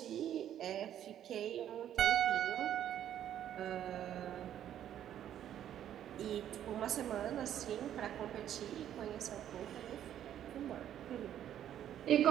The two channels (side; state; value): left; quieter; 10.7 dB